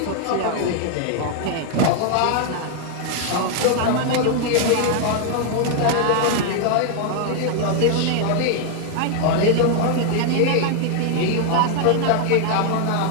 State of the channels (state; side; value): different; both; correlation 0.00